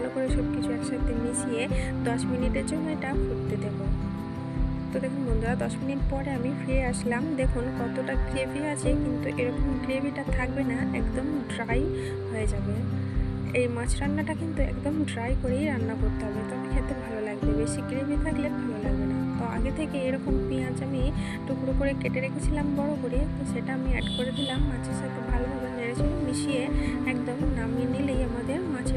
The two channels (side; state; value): both; identical; correlation 1.00